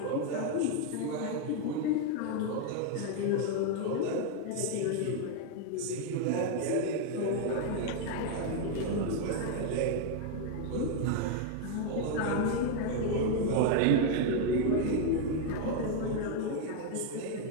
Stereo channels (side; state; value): both; different; correlation 0.01